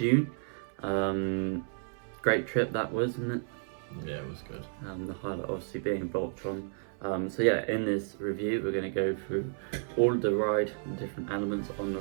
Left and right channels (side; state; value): left; silent; 56 dB below the other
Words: Great trip that was, wasn't it? Yeah, it was good. The highlight obviously being Voltron. So yeah, in this review we're going to go through all of the ride, the different elements on the